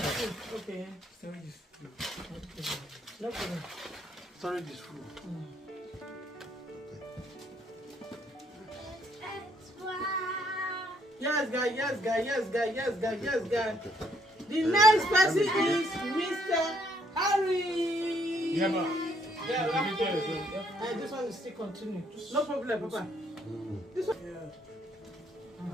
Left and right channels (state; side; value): normal; both; correlation 0.69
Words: Okay. No problem. Storage is full. Yes, guy. The next person is Mr. Harry. Yeah, man. Yeah, Let me tell you something. this one is still continue. No problem, Papa. This one.